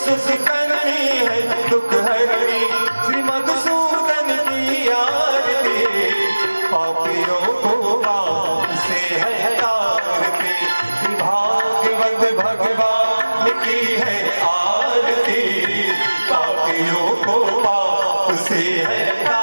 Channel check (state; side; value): inverted; both; correlation -1.00